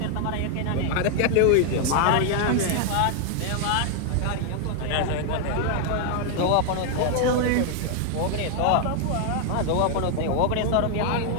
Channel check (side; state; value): both; different; correlation 0.00